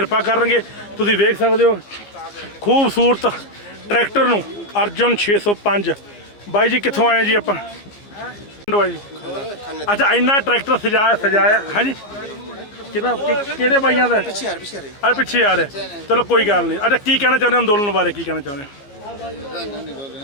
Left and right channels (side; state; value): right; late; 14 ms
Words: ਕਰਨਗੇ। ਤੁਸੀਂ ਵੇਖ ਸਕਦੇ ਹੋ ਖੂਬਸੂਰਤ ਟਰੈਕਟਰ ਨੂੰ ਅਰਜੁਨ 605। ਬਾਈ ਜੀ ਕਿੱਥੋਂ ਆਏ ਜੀ ਆਪਾਂ? ਜੀ ਅੱਛਾ, ਇੰਨਾ ਟਰੈਕਟਰ ਸਜਾਇਆ ਹੈ ਜੀ ਕਿਹੜੇ ਬਾਈਆਂ ਦਾ? ਪਿੱਛੇ ਆ ਰਿਹਾ। ਚਲੋ ਕੋਈ ਗੱਲ ਨਹੀਂ। ਅੱਛਾ, ਕੀ ਕਹਿਣਾ ਚਾਹੁੰਦੇ ਅੰਦੋਲਨ ਬਾਰੇ? ਕੀ ਕਹਿਣਾ ਚਾਹੁੰਦੇ?